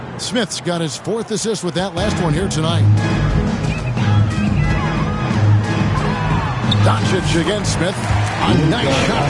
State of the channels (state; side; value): identical; both; correlation 1.00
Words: Smith's got his 4th assist with that last one here tonight. Doncic against Smith. A nice